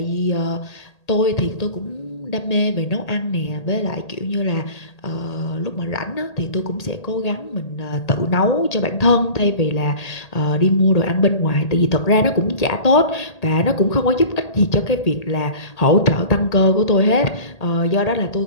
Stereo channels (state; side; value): late; right; 1.8 ms